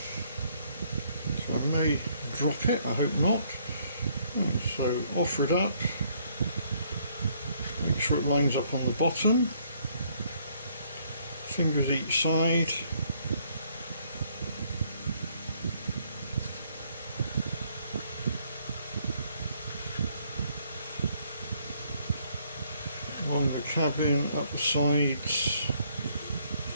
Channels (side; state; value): both; inverted; correlation -0.67